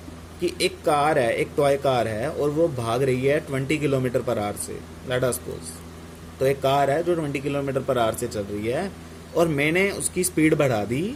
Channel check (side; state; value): both; identical; correlation 1.00